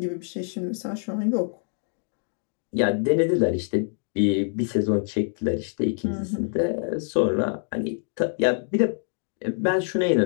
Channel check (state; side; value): silent; right; 61 dB below the other